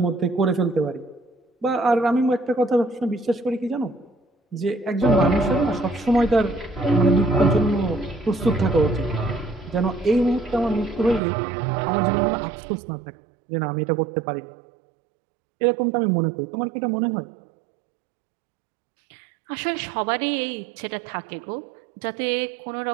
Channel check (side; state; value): left; drops out; at 11.2 s